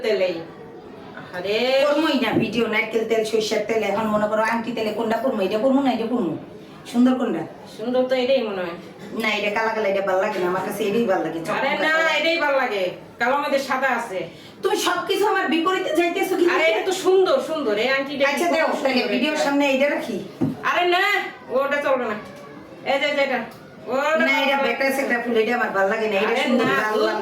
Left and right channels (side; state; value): both; identical; correlation 1.00